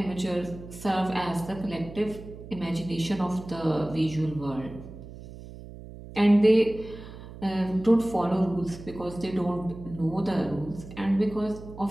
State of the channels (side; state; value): right; noise; hum, 14 dB below the sound